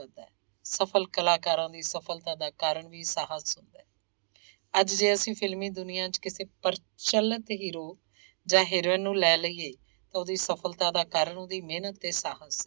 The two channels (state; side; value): silent; left; digital silence